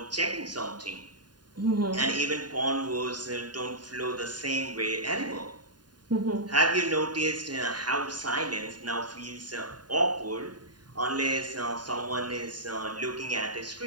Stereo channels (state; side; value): late; left; 0.70 ms